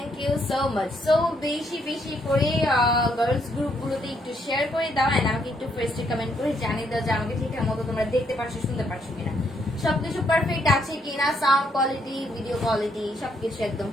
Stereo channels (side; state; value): both; normal; correlation 0.73